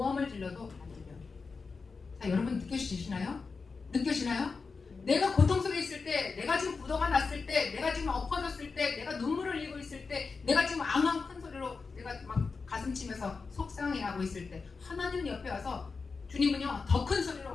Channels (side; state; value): right; quieter; 4.6 dB